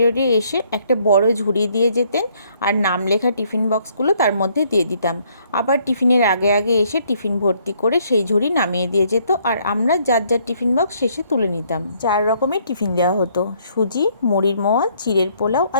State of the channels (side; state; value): both; inverted; correlation -0.67